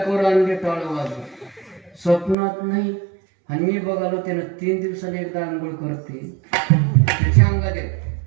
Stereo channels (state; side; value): drops out; left; at 2.4 s